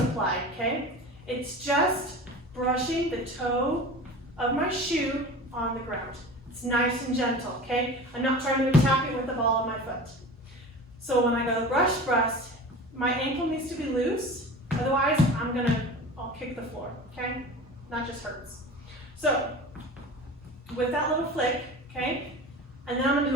okay? It's just brushing the toe of my shoe on the ground. It's nice and gentle, okay? I'm not trying to attack it with the ball of my foot. So when I go brush, my ankle needs to be loose. Otherwise, I'll kick the floor, okay? Not just hurts. So with that little flick, okay, and then I'm gonna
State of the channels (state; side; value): normal; both; correlation 0.35